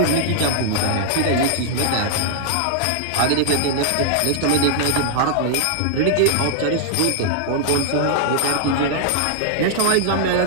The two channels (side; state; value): both; different; correlation 0.00